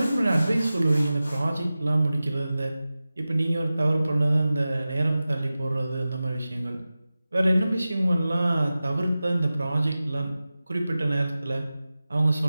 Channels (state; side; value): inverted; both; correlation -0.96